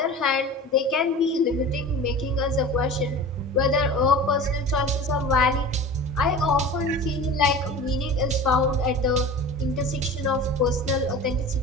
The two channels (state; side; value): normal; both; correlation 0.36